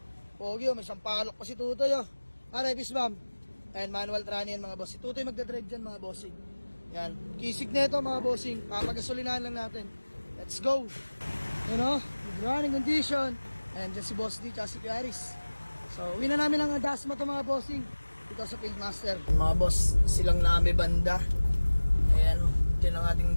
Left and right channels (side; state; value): both; inverted; correlation -1.00